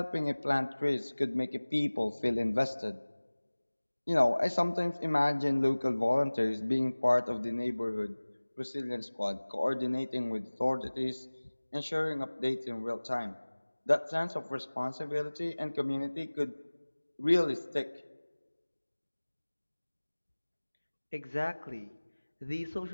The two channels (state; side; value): inverted; both; correlation -1.00